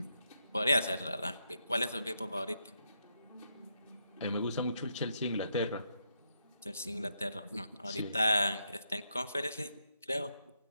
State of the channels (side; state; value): both; inverted; correlation -0.80